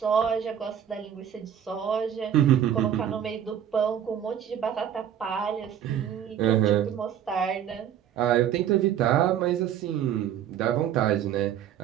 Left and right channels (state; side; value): quieter; left; 9.7 dB